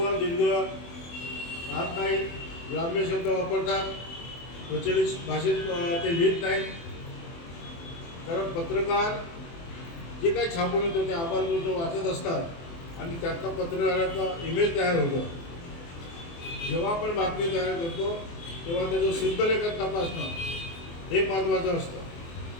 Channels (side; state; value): right; late; 24 ms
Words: दीर्घ राहत नाही, ग्राम्य शब्द वापरतात, प्रचलित भाषेत ते लिहित नाहीत. कारण पत्रकार जे काही छापून येतं ते आबालवृद्ध वाचत असतात आणि त्यातनं पत्रकाराचा इमेज तयार होतो. जेव्हा आपण बातमी तयार करतो तेव्हा त्याचं शुद्ध लेखन तपासणं हे महत्त्वाचं असतं.